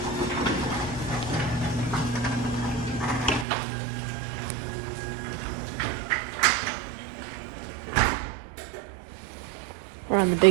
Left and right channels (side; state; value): left; drops out; at 3.5 s